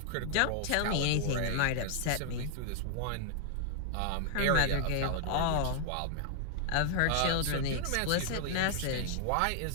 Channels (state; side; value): different; both; correlation 0.00